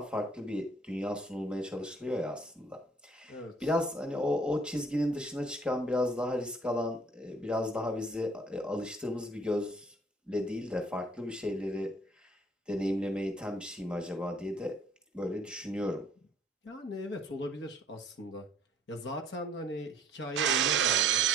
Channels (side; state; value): both; normal; correlation 0.59